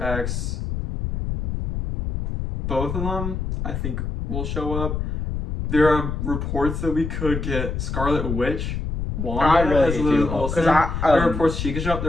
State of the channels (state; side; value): noise; left; rumble, 3 dB below the sound